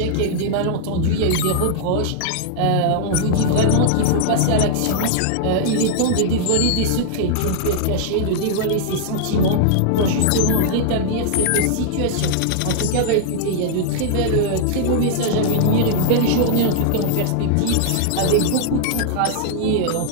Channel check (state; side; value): different; both; correlation -0.01